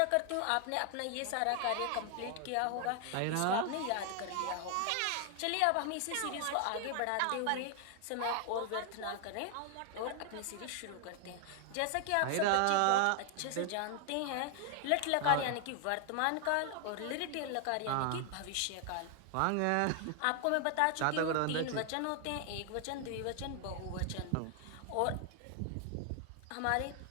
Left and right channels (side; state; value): both; different; correlation 0.00